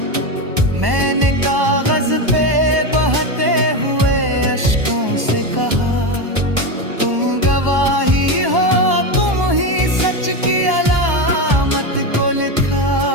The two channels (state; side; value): late; left; 1.1 ms